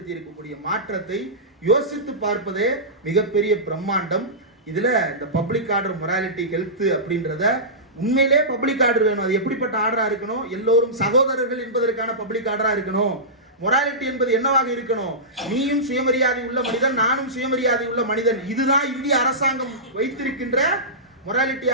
இருக்கக்கூடிய மாற்றத்தை யோசித்து பார்ப்பதே மிகப்பெரிய பிரம்மாண்டம். இதுல இந்த பப்ளிக் ஆர்டர் மொராலிட்டி ஹெல்த் அப்படின்றத உண்மையிலே பப்ளிக் ஆர்டர் வேணும். அது எப்படிப்பட்ட ஆர்டரா இருக்கணும்? எல்லோரும் சகோதரர்கள் என்பதற்கான பப்ளிக் ஆர்டரா இருக்கணும். மொராலிட்டி என்பது என்னவாக இருக்கணும்? நீயும் சுயமரியாதை உள்ள மனிதன், நானும் சுயமரியாதை உள்ள மனிதன். இதுதான் இந்திய அரசாங்கம் வைத்திருக்கின்ற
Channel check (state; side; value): normal; both; correlation -0.18